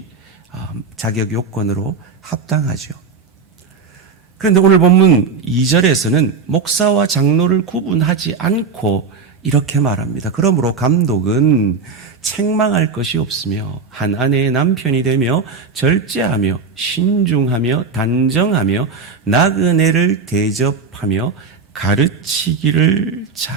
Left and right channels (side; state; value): left; quieter; 5.0 dB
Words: 자격 요건으로 합당하죠. 그런데 오늘 본문 2절에서는 목사와 장로를 구분하지 않고 이렇게 말합니다. 그러므로 감독은 책망할 것이 없으며 한 아내의 남편이 되며 절제하며 신중하며 단정하며 나그네를 대접하며 가르치기를